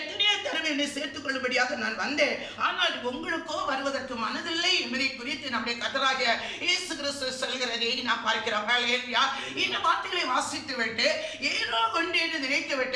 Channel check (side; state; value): both; identical; correlation 1.00